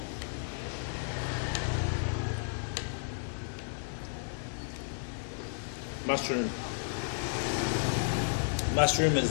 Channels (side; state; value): right; silent; digital silence